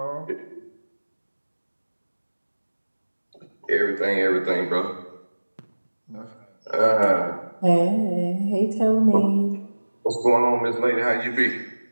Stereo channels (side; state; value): both; inverted; correlation -1.00